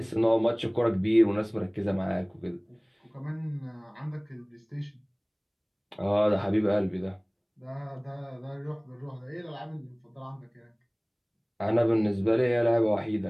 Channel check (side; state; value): both; identical; correlation 1.00